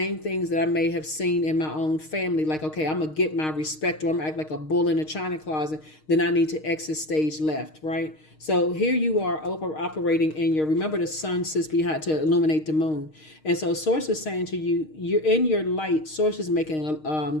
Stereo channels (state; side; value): late; right; 6.5 ms